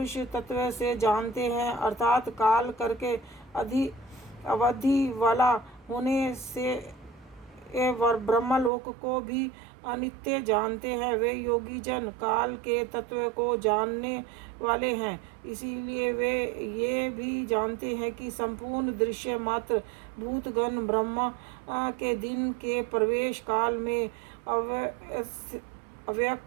तत्व से जानते हैं, अर्थात काल करके अवधि वाला होने से ब्रह्मलोक को भी अनित्य जानते हैं, वे योगी जन काल के तत्व को जानने वाले हैं। इसीलिए वे ये भी जानते हैं कि संपूर्ण दृश्य मात्र भूतगण ब्रह्मा के दिन के प्रवेश काल में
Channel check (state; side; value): drops out; left; at 8.7 s